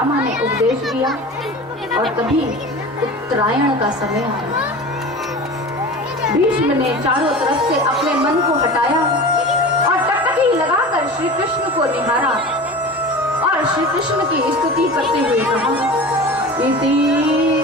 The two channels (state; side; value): normal; both; correlation 0.34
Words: ने उपदेश दिया। और तभी उत्तरायण का समय आया। भीष्म ने चारों तरफ से अपने मन को हटाया और टकटकी लगाकर श्री कृष्ण को निहारा और श्री कृष्ण की स्तुति करते हुए कहा, इति